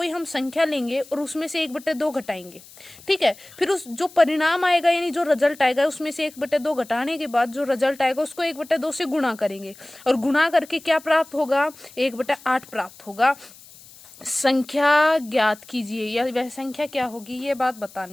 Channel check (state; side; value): noise; left; hiss, 22 dB below the sound